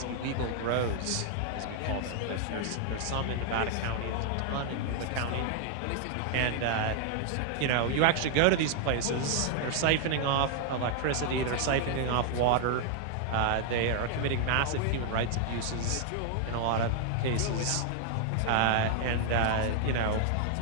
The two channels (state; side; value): different; both; correlation 0.00